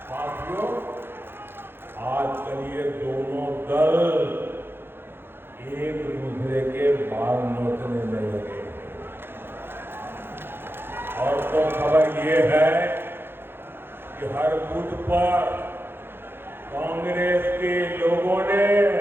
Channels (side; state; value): left; late; 0.10 ms